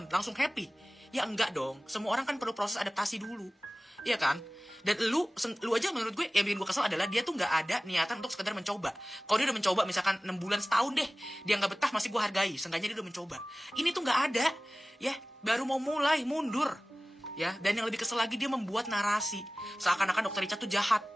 langsung happy? Ya enggak dong. Semua orang kan perlu proses adaptasi dulu, iya kan? Dan lu aja menurut gue yang bikin gue kesel adalah dia tuh nggak ada niatan untuk sekedar mencoba. Kalau dia udah mencoba misalkan 6 bulan, setahun deh, dia nggak betah, masih gue hargai. Seenggaknya dia udah mencoba. Ini tuh nggak ada, ya baru mau mulai mundur, ya. Dan yang lebih kesel lagi, dia membuat narasi seakan-akan Dr. Richard tuh jahat,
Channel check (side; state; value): both; normal; correlation 0.98